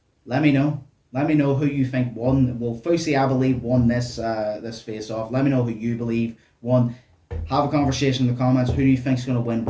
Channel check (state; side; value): identical; both; correlation 1.00